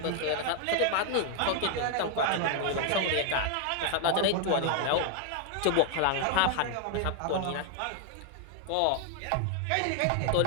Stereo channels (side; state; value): both; different; correlation 0.00